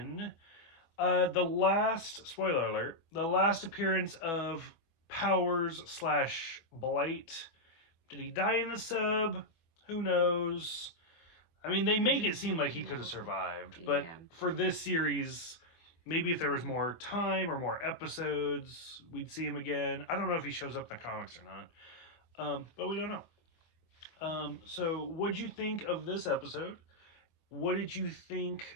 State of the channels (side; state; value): right; late; 24 ms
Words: The last, spoiler alert, the last appearance of Powers / Blight. Did he die in the sub? Who knows? I mean, they make it seem like he could have survived, but for this series, maybe if there was more time or more episodes, we'd see him again. I don't know if he shows up in the comics or not, but we don't know. So what'd you think of this episode? What did you think